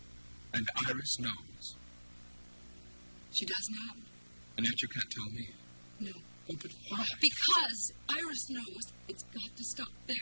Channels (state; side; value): inverted; both; correlation -1.00